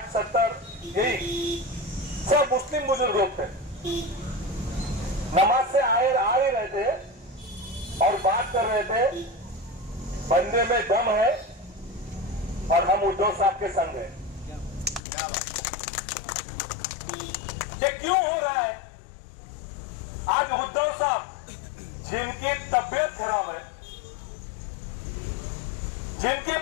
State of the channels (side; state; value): right; drops out; at 15.0 s